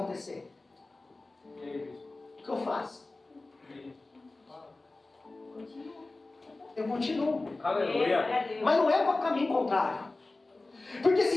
o que eu faço? Eu continuo. Aleluia. Mas não é para o caminho contrário. Porque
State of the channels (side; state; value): right; quieter; 3.2 dB